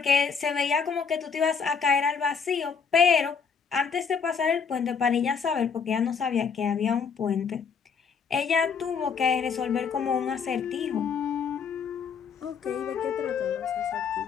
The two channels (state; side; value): quieter; right; 6.1 dB